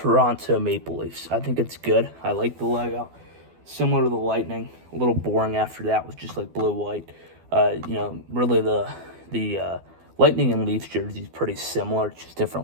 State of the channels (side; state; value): left; late; 12 ms